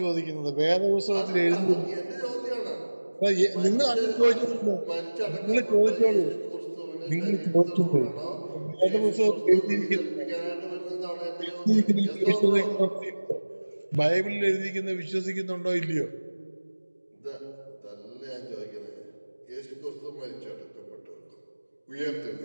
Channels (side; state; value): both; inverted; correlation -1.00